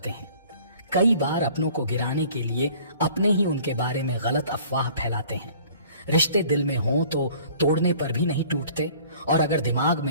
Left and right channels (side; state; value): both; inverted; correlation -0.51